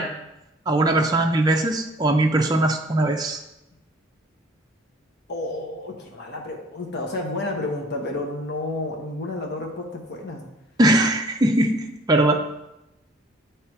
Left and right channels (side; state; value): both; normal; correlation 0.53